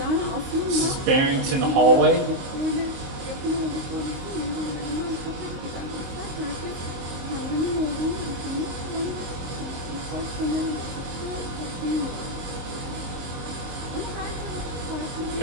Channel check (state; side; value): late; left; 22 ms